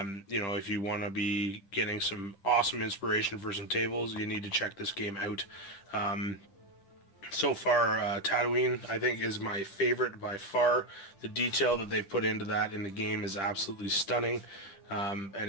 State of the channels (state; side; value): late; right; 10 ms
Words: you want to be getting some awesome inspiration for some tables, you need to check this game out. So far, Tatooine, I think, is my favorite by far. The detail that they've put into that in the game is absolutely stunning. And